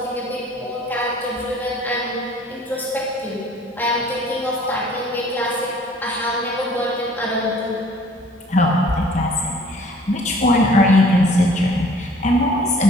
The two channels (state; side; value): normal; both; correlation 0.53